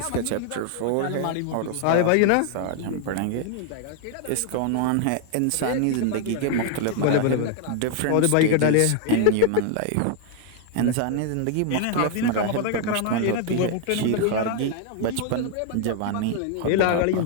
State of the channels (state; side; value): different; both; correlation 0.00